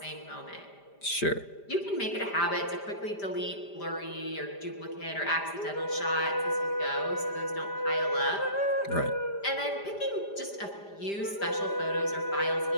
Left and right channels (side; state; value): right; late; 5.0 ms